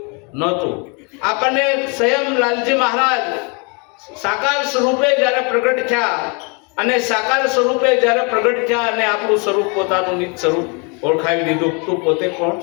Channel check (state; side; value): quieter; right; 33.1 dB